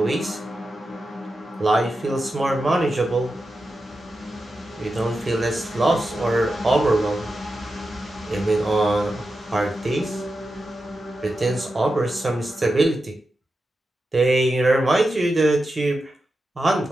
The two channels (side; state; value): both; normal; correlation 0.90